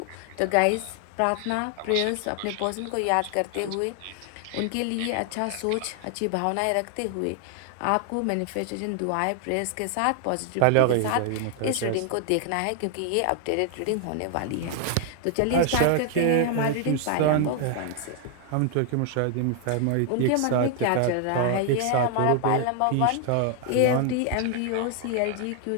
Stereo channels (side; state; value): both; different; correlation 0.00